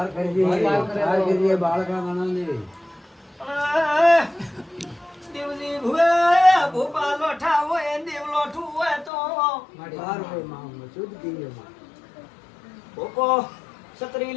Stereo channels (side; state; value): right; drops out; at 9.1 s